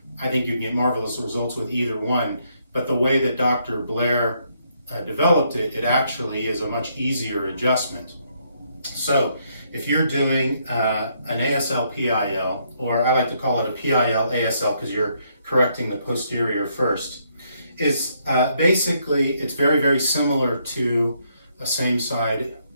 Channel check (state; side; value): inverted; both; correlation -0.73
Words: I think you can get marvelous results with either one, but the way that Dr. Blair developed it, it actually is a much easier adjustment. So if you're doing an ASL PIL, or I like to call it a PIL ASL because you're correcting the posterior first, is basically it's very, very similar to a same side